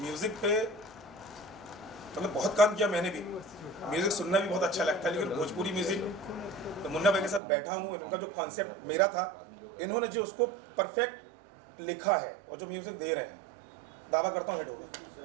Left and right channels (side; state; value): left; drops out; at 7.4 s